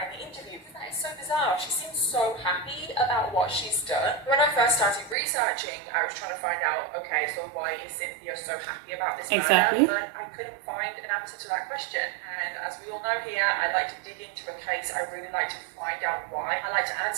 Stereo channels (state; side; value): drops out; left; at 5.2 s